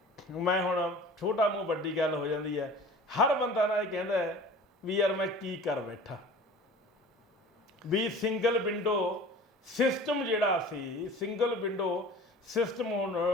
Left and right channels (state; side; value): normal; both; correlation 0.42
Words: ਮੈਂ ਹੁਣ ਛੋਟਾ ਮੂੰਹ ਵੱਡੀ ਗੱਲ ਹੋ ਜਾਂਦੀ ਹੈ, ਹਰ ਬੰਦਾ ਨਾ ਇਹ ਕਹਿੰਦਾ ਵੀ ਯਾਰ ਮੈਂ ਕੀ ਕਰ ਬੈਠਾ, ਵੀ ਸਿੰਗਲ ਵਿੰਡੋ ਸਿਸਟਮ ਜਿਹੜਾ ਸੀ, ਸਿੰਗਲ ਵਿੰਡੋ ਸਿਸਟਮ ਹੁਣ